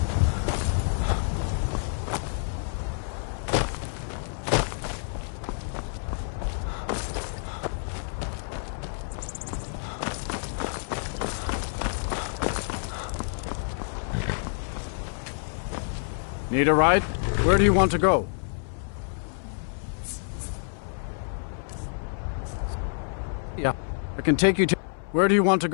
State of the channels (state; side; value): silent; right; digital silence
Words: Need a ride? Where do you want to go? Yeah, I can take you to... Where do you want to